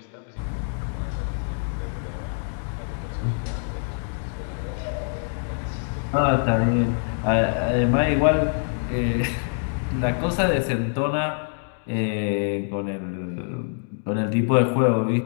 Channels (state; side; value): silent; right; digital silence